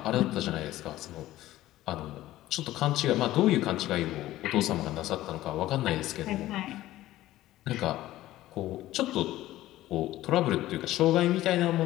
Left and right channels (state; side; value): quieter; right; 15.4 dB